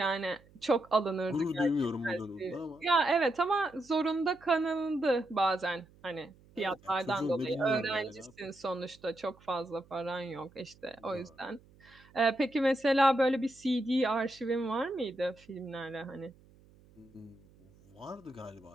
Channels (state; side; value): noise; right; hum, 27 dB below the sound